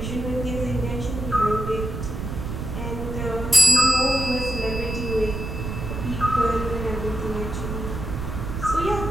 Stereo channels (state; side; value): noise; right; rumble, 5 dB below the sound